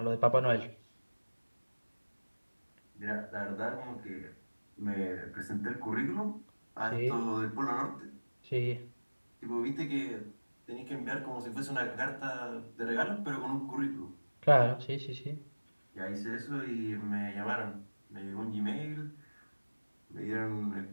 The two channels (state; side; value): inverted; both; correlation -1.00